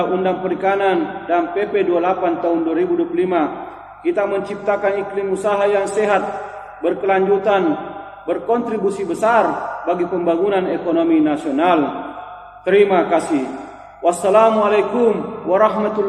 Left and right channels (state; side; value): identical; both; correlation 1.00